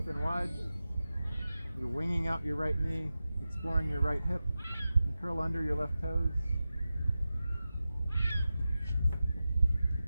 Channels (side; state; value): both; inverted; correlation -0.93